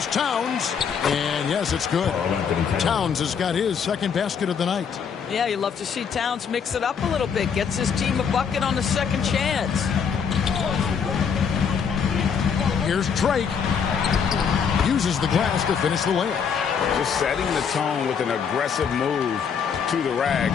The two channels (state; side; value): quieter; right; 6.8 dB